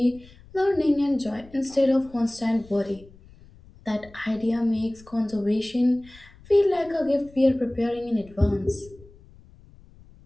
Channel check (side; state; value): left; noise; rumble, 24 dB below the sound